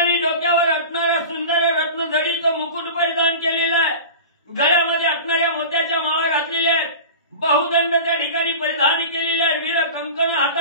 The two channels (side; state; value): both; inverted; correlation -0.33